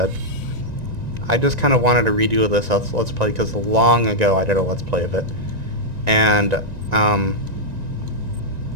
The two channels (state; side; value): late; left; 1.9 ms